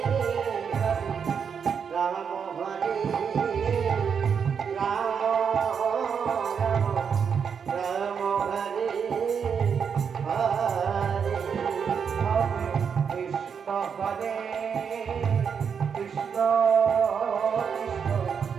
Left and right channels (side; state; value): left; quieter; 6.8 dB